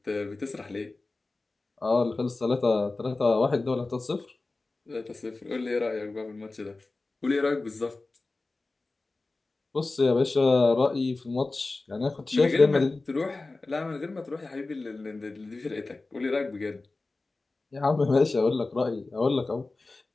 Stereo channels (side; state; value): right; quieter; 3.4 dB